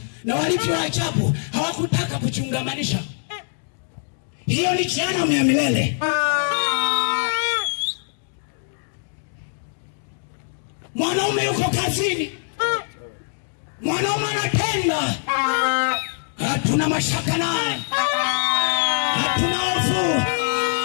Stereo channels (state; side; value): silent; right; digital silence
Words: na walivyo ajabu hawakutaka kuchungamanisha. Hiyo ni jehanamu ya milele. Mwanaume yuko kazini, mwanaume anatenda, hatuna mashaka naye, hatuna hofu,